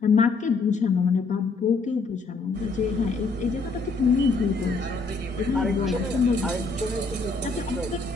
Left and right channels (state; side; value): quieter; right; 3.9 dB